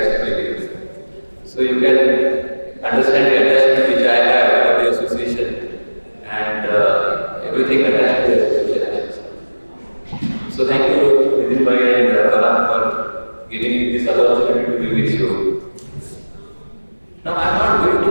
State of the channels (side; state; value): both; inverted; correlation -1.00